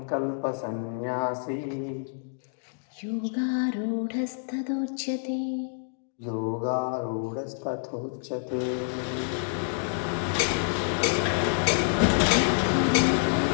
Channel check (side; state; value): right; silent; digital silence